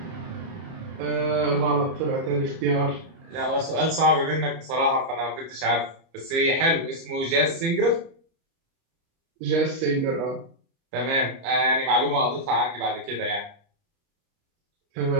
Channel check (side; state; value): left; late; 30 ms